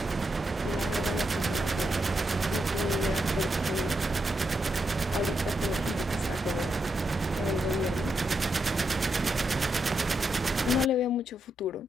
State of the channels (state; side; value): normal; both; correlation 0.83